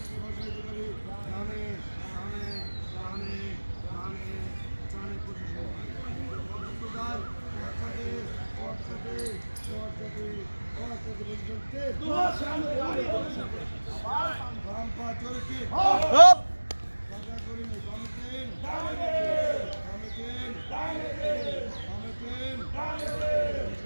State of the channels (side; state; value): both; inverted; correlation -1.00